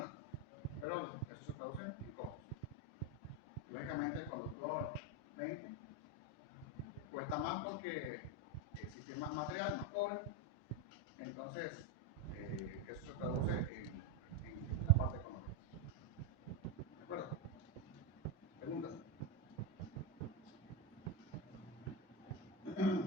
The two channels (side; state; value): both; normal; correlation 0.09